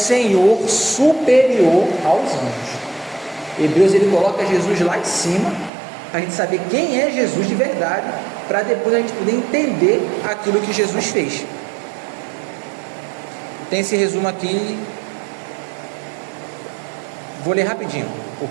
superior aos anjos. Hebreus, ele coloca Jesus lá em cima, para a gente saber quem é Jesus de verdade, para depois a gente poder entender aquilo que Jesus fez. Tem esse resumo aqui, vou ler rapidinho,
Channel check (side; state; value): left; drops out; at 5.7 s